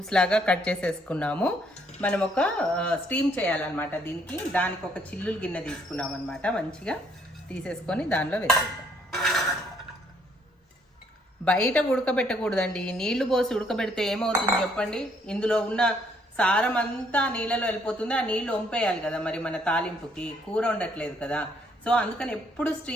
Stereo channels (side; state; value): both; normal; correlation 0.67